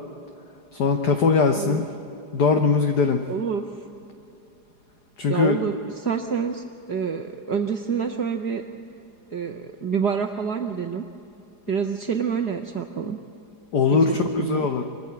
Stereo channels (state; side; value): late; right; 4.8 ms